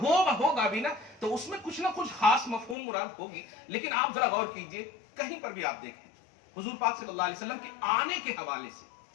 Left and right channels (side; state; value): right; drops out; at 2.8 s